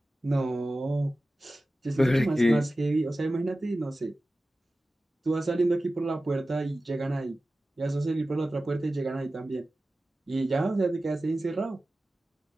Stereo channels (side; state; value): both; normal; correlation 0.95